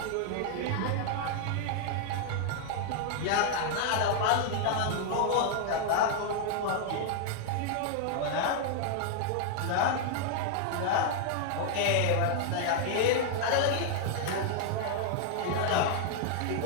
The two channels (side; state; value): both; different; correlation -0.01